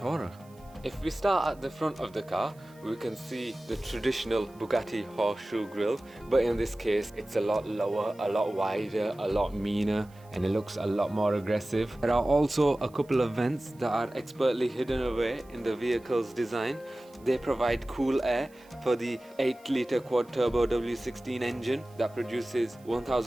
If we start at the front of the car, we can see the traditional Bugatti horseshoe grille, but in this case it's a lot lower, a lot wider, a lot meaner, and it looks a lot more aggressive. There are also a couple of vents that are expertly hidden away in the vehicle's design. They provide cool air for the 8-litre quad-turbo W16 engine that produces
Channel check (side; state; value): right; noise; hiss, 29 dB below the sound